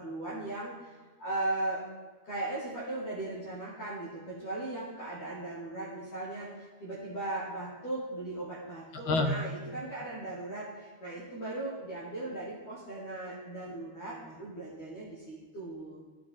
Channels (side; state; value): right; late; 12 ms